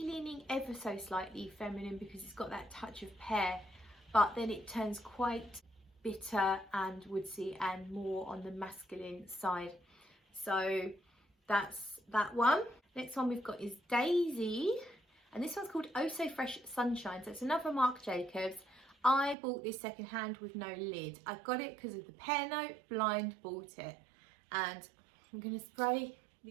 leaning ever so slightly feminine because it's got that touch of pear, but then it turns quite bitter and woodsy and more on the masculine side. So that's that one. Next one we've got is Daisy, and this one's called Oh So Fresh Sunshine. So it's another Marc Jacobs. I bought this secondhand with no lid. I got it because of the pear note, blind bought it. And I'm going to spray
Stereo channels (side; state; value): left; drops out; at 19.4 s